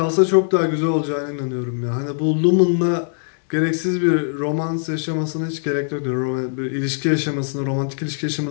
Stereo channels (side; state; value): right; silent; digital silence